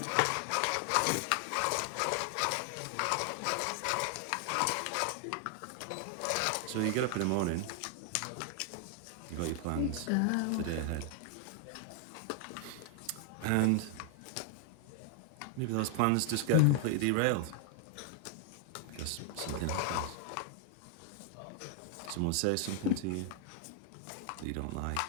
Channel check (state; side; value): different; both; correlation 0.00